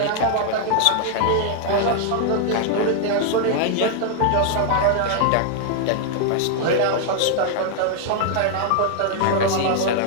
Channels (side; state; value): both; different; correlation -0.01